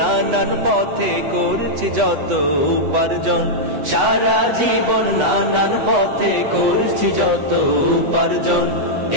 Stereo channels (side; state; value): left; late; 8.1 ms